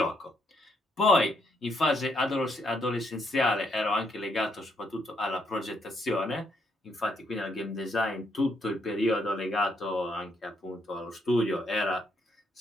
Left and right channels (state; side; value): normal; both; correlation 0.74